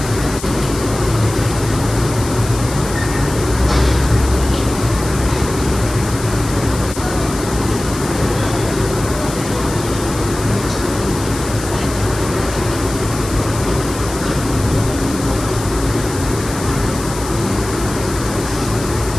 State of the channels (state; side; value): noise; left; hiss, 11 dB below the sound